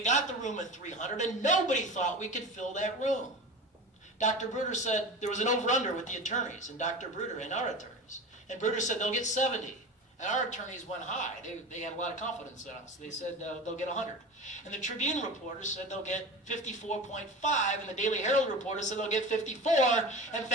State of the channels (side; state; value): both; normal; correlation 0.31